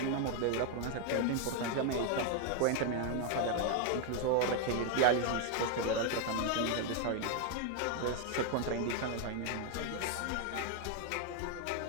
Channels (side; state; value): both; different; correlation 0.01